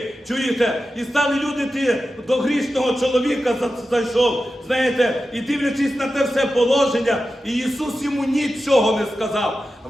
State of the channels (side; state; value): both; normal; correlation 0.92